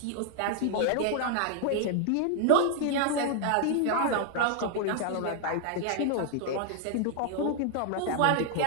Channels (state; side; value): different; both; correlation 0.00